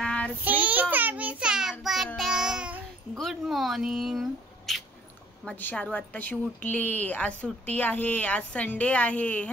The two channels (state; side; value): normal; both; correlation 0.54